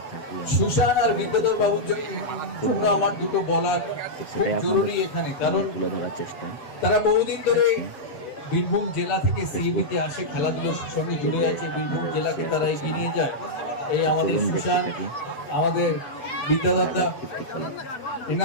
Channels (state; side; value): late; right; 8.0 ms